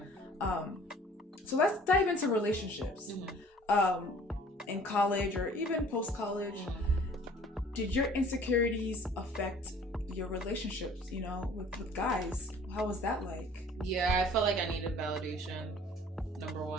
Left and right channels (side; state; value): both; normal; correlation 0.51